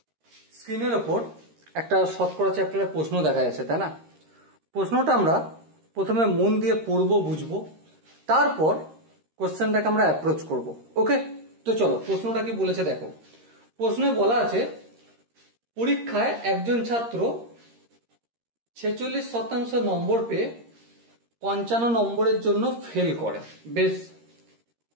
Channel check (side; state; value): left; late; 13 ms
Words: স্ক্রিনের ওপর একটা শতকরা চ্যাপ্টারের প্রশ্ন দেখা যাচ্ছে, তাই না? প্রশ্নটা আমরা প্রথমে মন দিয়ে পড়বো, বুঝবো, তারপর কোশ্চেনটাকে আমরা অ্যাপ্রোচ করব। ওকে, তো চলো প্রশ্নটা কি বলেছে দেখো। প্রশ্নে বলা আছে পরীক্ষায় একজন ছাত্র 46% নম্বর পেয়ে 55 নম্বরের জন্য ফেল করে, বেশ।